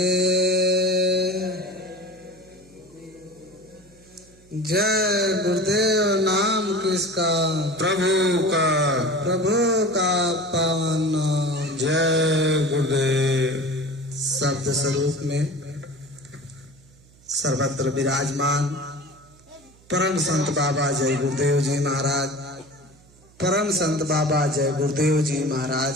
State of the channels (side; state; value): right; noise; hum, 27 dB below the sound